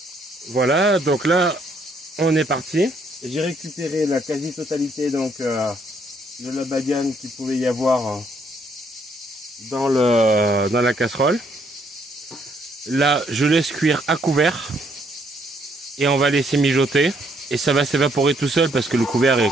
voilà, donc là on est parti. J'ai récupéré la quasi-totalité donc de la badiane qu'il pouvait y avoir dans la casserole. Là, je laisse cuire à couvert et on va laisser mijoter et ça va s'évaporer tout seul parce que le couvercle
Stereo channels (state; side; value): normal; both; correlation 0.69